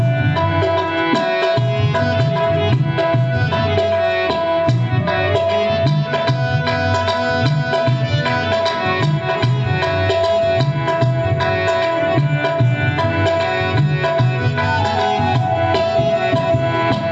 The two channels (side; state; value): both; identical; correlation 1.00